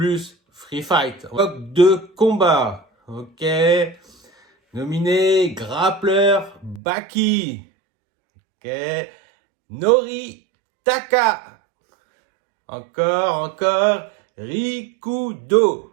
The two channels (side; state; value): left; drops out; at 6.8 s